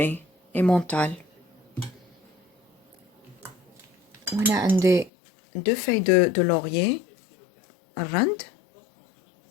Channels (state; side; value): drops out; right; at 5.1 s